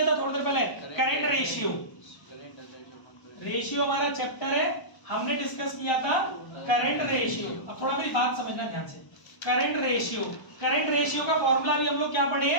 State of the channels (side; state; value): right; late; 1.0 ms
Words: था थोड़ी देर पहले, करंट रेशियो। रेशियो हमारा चैप्टर है, हमने डिस्कस किया था करंट रेशियो। अब थोड़ा मेरी बात समझना ध्यान से, करंट रेशियो, करंट रेशियो का फॉर्मूला भी हम लोग क्या पढ़े